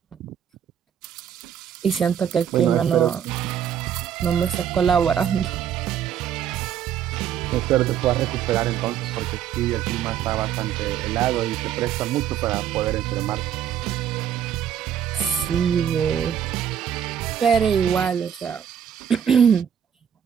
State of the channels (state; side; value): quieter; left; 9.0 dB